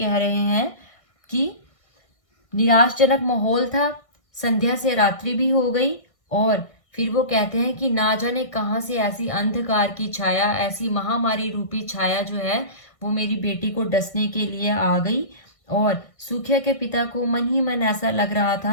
रहे हैं कि निराशजनक माहौल था, संध्या से रात्रि भी हो गई, और फिर वो कहते हैं कि ना जाने कहाँ से ऐसी अंधकार की छाया, ऐसी महामारी रूपी छाया जो है वो मेरी बेटी को डसने के लिए आ गई। और सुखिया के पिता को मन ही मन ऐसा लग रहा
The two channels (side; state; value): right; late; 1.6 ms